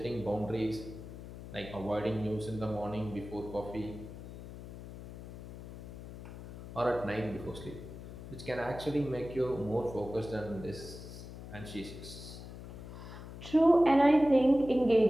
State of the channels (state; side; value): noise; left; hum, 12 dB below the sound